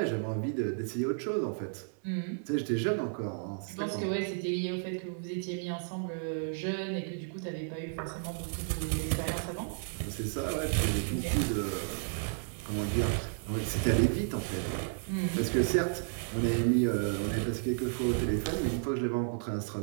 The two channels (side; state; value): left; silent; digital silence